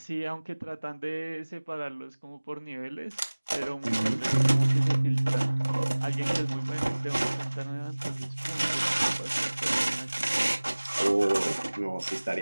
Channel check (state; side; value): inverted; both; correlation -1.00